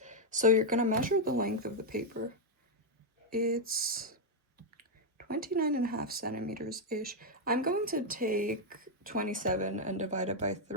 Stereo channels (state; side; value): normal; both; correlation 0.00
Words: So you're going to measure the length of the paper. It's 29.5 centimeters-ish. I'm going to take 27 and divide it by